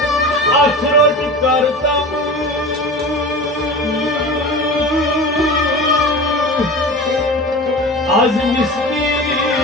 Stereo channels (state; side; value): normal; both; correlation 0.33